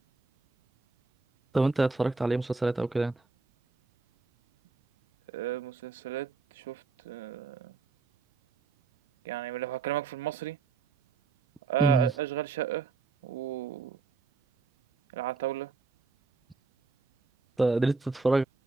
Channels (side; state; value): left; quieter; 4.1 dB